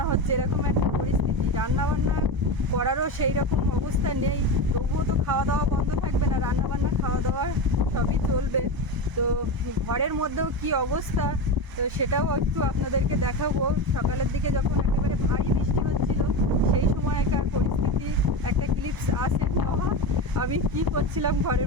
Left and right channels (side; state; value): left; late; 1.0 ms